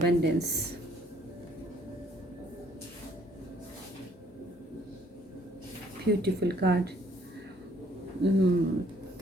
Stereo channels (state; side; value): normal; both; correlation 0.63